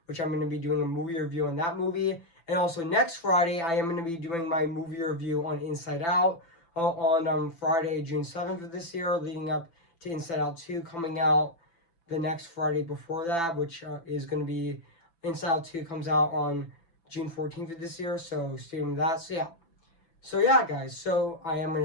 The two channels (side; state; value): right; late; 6.0 ms